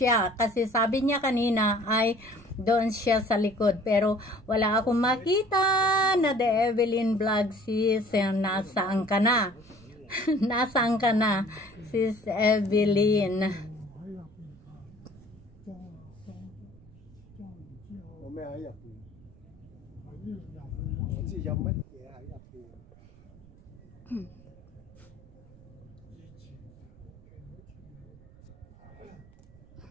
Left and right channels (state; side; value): noise; right; rumble, 24 dB below the sound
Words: kasi sabi niya kanina ay doon siya sa likod. Pero wala akong makita na The Evelyn Vlog. Sis, nasaan ka na? Nasaan ka na, Sis Evelyn?